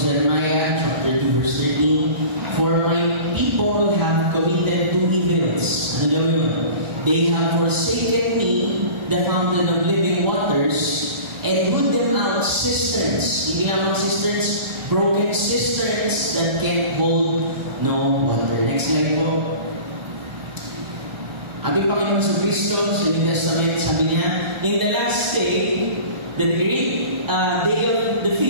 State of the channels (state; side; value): late; left; 1.4 ms